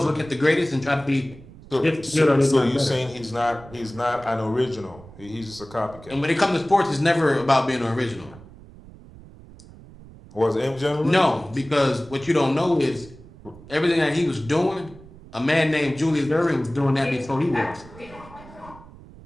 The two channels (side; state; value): right; noise; rumble, 20 dB below the sound